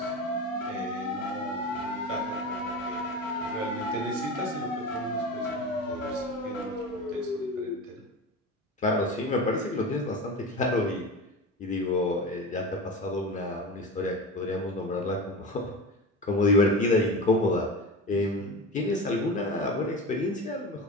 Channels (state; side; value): normal; both; correlation 0.28